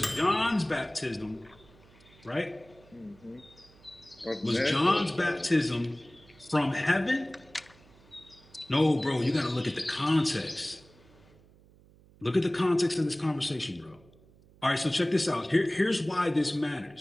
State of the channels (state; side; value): noise; right; hum, 27 dB below the sound